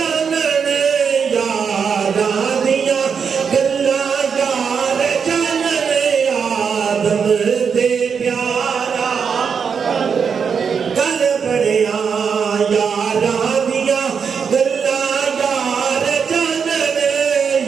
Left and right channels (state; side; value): quieter; left; 6.4 dB